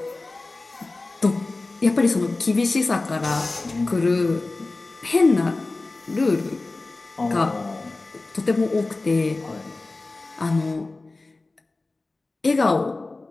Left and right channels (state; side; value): quieter; right; 3.3 dB